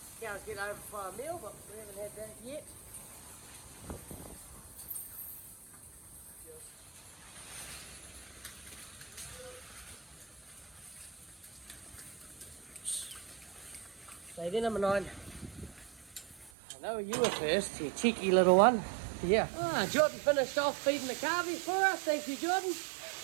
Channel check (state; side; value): drops out; left; at 16.5 s